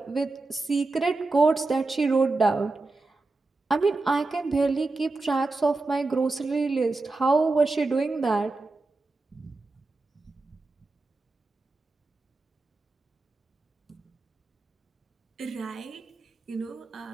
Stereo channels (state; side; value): quieter; left; 3.4 dB